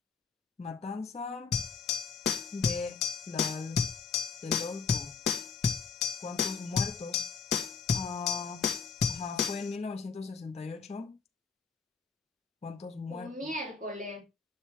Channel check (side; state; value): right; quieter; 5.2 dB